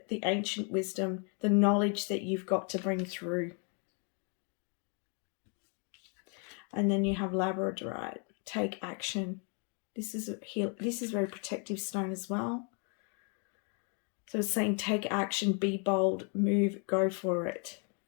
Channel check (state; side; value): quieter; right; 38.4 dB